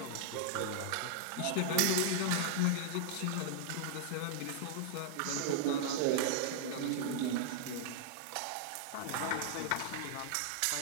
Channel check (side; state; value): both; different; correlation -0.01